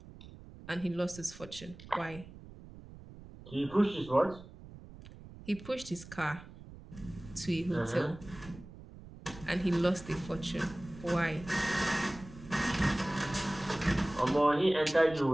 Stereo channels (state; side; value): noise; right; rumble, 17 dB below the sound